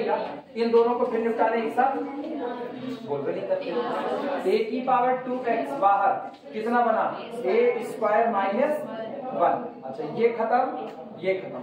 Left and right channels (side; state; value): both; identical; correlation 1.00